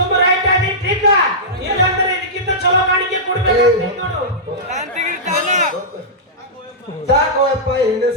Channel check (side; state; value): both; normal; correlation -0.13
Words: ರೈಟ್ ಆಗಿ ಟ್ರಿಕ್ ಇಲ್ಲಂದ್ರೆ ಸಾಕೋಯಪ್ಪ ಹಿಂದೆ